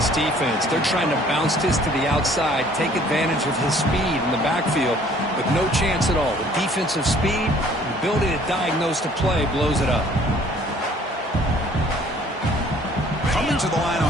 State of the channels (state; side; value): normal; both; correlation 0.56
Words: defense. They're trying to bounce this to the outside, take advantage of his speed in the backfield, but no chance at all. The defensive speed, the ability to diagnose the play blows it up. Coming to the line